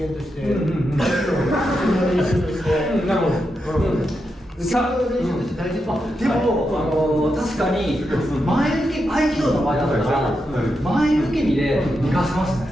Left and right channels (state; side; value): normal; both; correlation 0.86